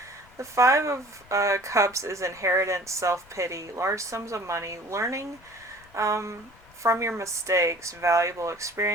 The Five of Cups is inheritance, self-pity, large sums of money, learning from your mistakes, valuable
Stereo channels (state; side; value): noise; left; rumble, 26 dB below the sound